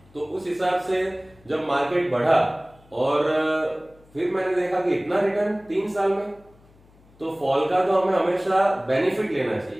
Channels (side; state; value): left; noise; hum, 28 dB below the sound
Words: तो उस हिसाब से जब मार्केट बढ़ा और फिर मैंने देखा कि इतना रिटर्न 3 साल में, तो फॉल का तो हमें हमेशा बेनिफिट लेना